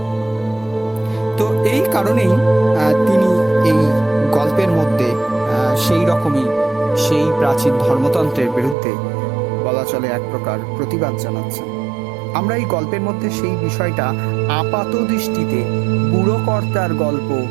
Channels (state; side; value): drops out; left; at 8.8 s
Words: তো এই কারণেই তিনি এই গল্পের মধ্যে সেই রকমই সেই প্রাচীন ধর্মতন্ত্রের বিরুদ্ধে বলা চলে এক প্রকার প্রতিবাদ জানাচ্ছেন। আমরা এই গল্পের মধ্যে সেই বিষয়টা আপাত দৃষ্টিতে বুড়ো কর্তার গল্প